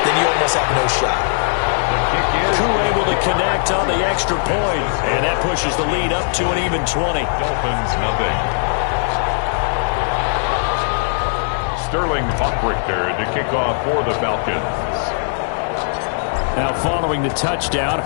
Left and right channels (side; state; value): right; silent; digital silence